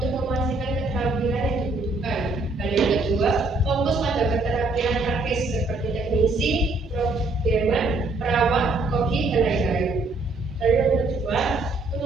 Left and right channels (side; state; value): left; quieter; 3.1 dB